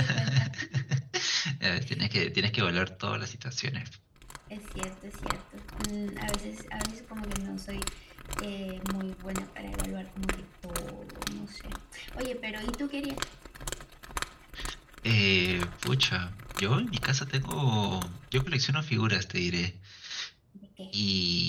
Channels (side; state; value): both; identical; correlation 1.00